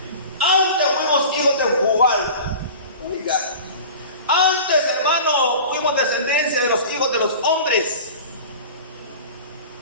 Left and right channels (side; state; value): both; inverted; correlation -0.37